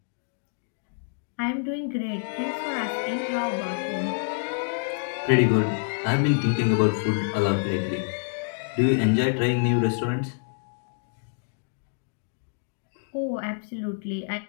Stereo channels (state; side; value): silent; right; digital silence